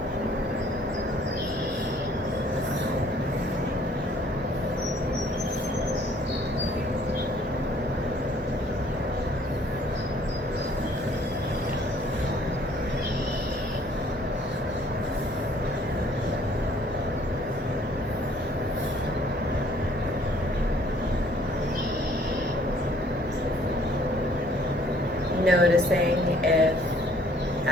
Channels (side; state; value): both; normal; correlation 0.59